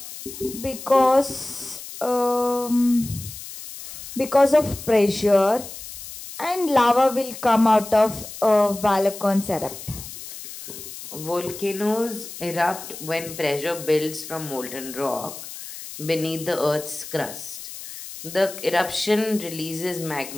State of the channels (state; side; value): noise; left; hiss, 12 dB below the sound